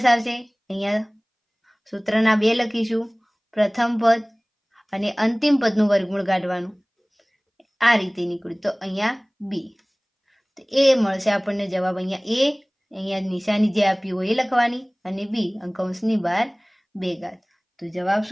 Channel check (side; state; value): both; identical; correlation 1.00